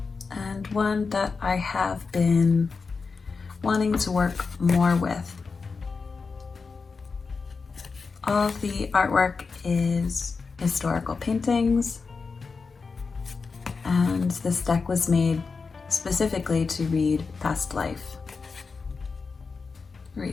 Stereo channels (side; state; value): right; quieter; 4.7 dB